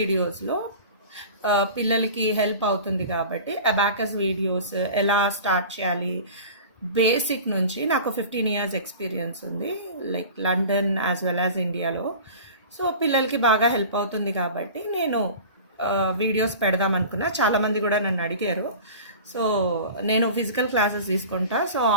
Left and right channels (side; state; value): both; inverted; correlation -0.38